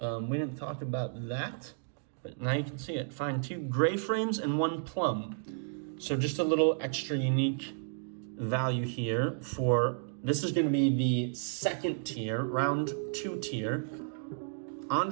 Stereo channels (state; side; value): silent; left; digital silence